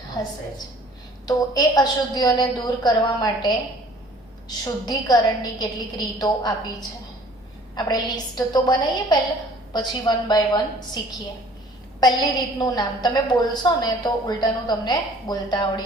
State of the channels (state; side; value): normal; both; correlation 0.53